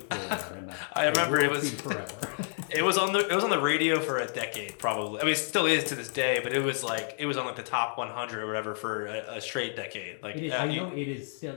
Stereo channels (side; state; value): right; silent; 58 dB below the other